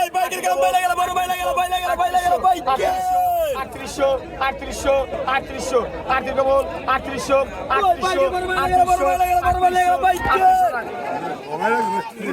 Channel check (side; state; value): both; identical; correlation 1.00